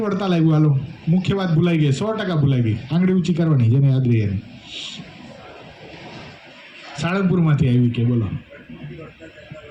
વડતાલ આવ્યું? હાલો, મુખ્ય વાત ભૂલાઈ ગઈ, 100% ભૂલાઈ ગઈ. આંગળી ઊંચી કરવાની, જેને યાદ રહી એને. સાળંગપુરમાંથી આવી કે? બોલો.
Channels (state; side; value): identical; both; correlation 1.00